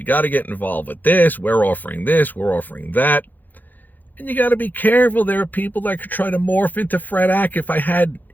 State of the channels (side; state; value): right; late; 0.085 ms